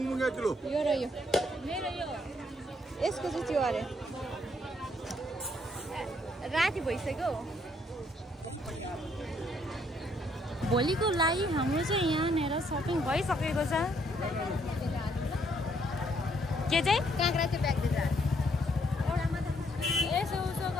र यो मेरो यो यसको चाहिँ त्यो अरे राति भइसक्यो भोलिको लागि हाम्रो चाहिँ यहाँनिर सपिङ भइसकेको छ के चाहिँ काँक्रा चाहिँ ब्याग दिन्छ एउटामा त यसो उसो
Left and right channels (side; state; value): both; normal; correlation 0.70